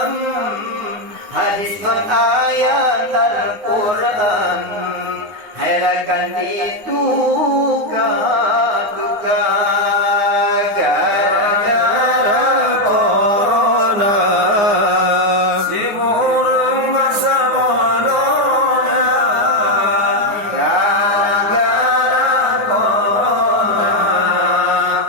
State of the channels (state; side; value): late; left; 9.6 ms